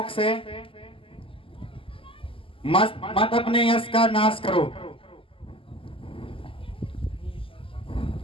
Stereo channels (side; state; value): right; late; 0.26 ms